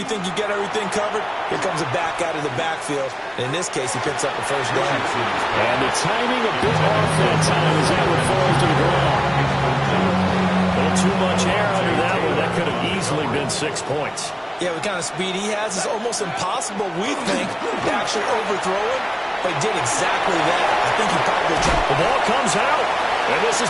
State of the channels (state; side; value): identical; both; correlation 1.00